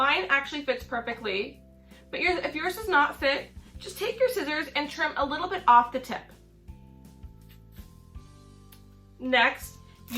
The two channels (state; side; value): identical; both; correlation 1.00